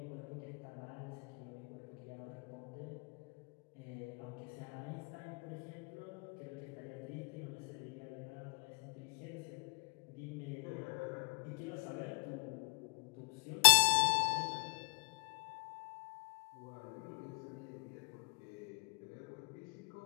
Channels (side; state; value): right; quieter; 35.9 dB